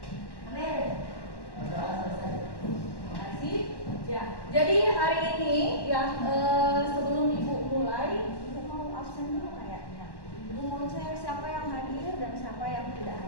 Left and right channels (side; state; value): right; late; 1.1 ms